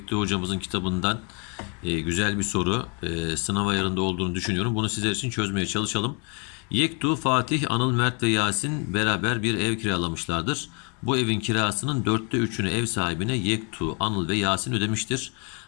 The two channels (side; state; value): right; quieter; 35.7 dB